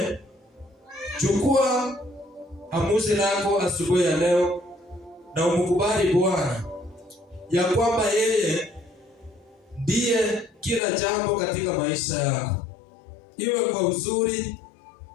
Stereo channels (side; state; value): right; drops out; at 10.8 s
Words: chukua amuzi lako asubuhi ya leo na umkubali Bwana ya kwamba yeye ndiye kila jambo katika maisha yako, iwe kwa uzuri,